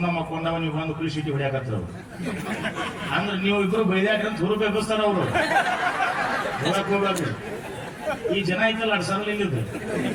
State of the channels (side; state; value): both; identical; correlation 1.00